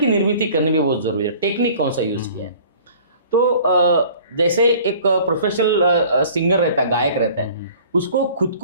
निर्मिति करनी भी बहुत ज़रूरी है। टेक्निक कौन सा यूज़ किया है। तो जैसे एक प्रोफेशनल सिंगर रहता है, गायक रहता है, उसको खुद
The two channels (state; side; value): inverted; both; correlation -0.49